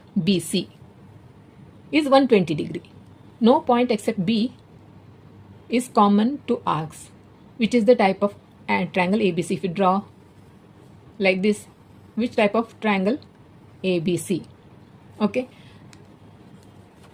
BC is 120 degree. No point except B is common to arcs, which is the type of triangle ABC. If you draw like this, which type of triangle? ABC. Okay.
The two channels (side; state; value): both; identical; correlation 1.00